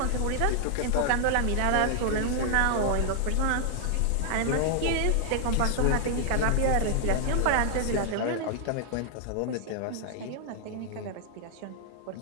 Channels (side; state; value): both; different; correlation 0.00